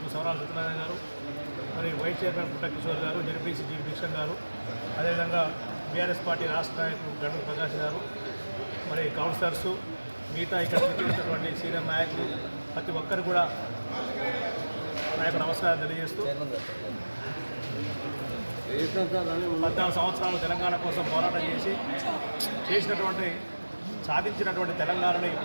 సవరాల సత్యనారాయణ గారు, మరి వైస్ చైర్మన్ పుట్ట కిషోర్ గారు, జడ్పీసీ జీ భిక్షన్ గారు, అదేవిధంగా బీఆర్ఎస్ పార్టీ రాష్ట్ర నాయకులు గండు ప్రకాష్ గారు, మరి కౌన్సిలర్సు, మిగతా ఇక్కడ చేసినటువంటి సీనియర్ నాయకులు ప్రతి ఒక్కరు కూడా నా యొక్క నమస్కారం తెలియజేస్తూ 14 సంవత్సరాలు తెలంగాణ కోసం పోరాటం చేసినటువంటి సాధించినటువంటి తెలంగాణని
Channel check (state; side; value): inverted; both; correlation -1.00